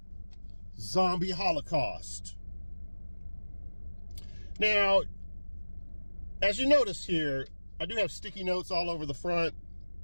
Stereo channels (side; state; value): both; inverted; correlation -1.00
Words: Zombie Holocaust. Now, as you notice here, I do have sticky notes all over the front.